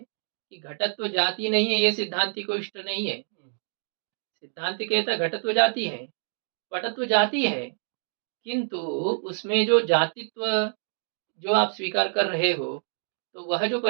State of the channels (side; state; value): left; silent; digital silence